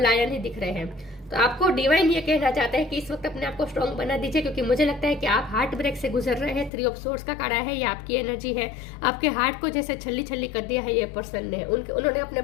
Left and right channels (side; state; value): right; drops out; at 6.7 s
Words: ही दिख रहे हैं। तो आपको डिवाइन ये कहना चाहता है कि इस वक्त अपने आप को स्ट्रॉन्ग बना दीजिए, क्योंकि मुझे लगता है कि आप हार्ट ब्रेक से गुजर रहे हैं। 3 ऑफ सोर्ड्स का कार्ड है, ये आपकी एनर्जी है। आपके हार्ट को जैसे छल्ली छल्ली कर दिया है ये पर्सन ने, उन्होंने